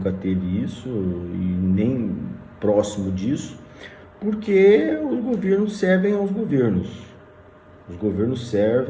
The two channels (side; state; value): both; identical; correlation 1.00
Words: teve isso e nem próximo disso, porque os governos servem aos governos, os governos